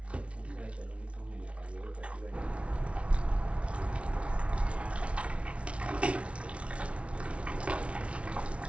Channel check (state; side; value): late; left; 0.061 ms